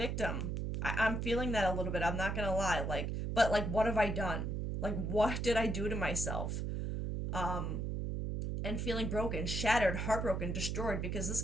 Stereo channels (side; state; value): right; noise; hum, 2 dB below the sound